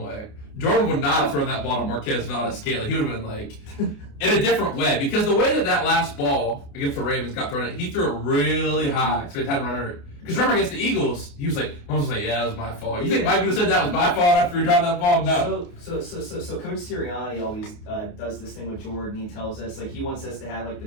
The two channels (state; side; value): late; right; 28 ms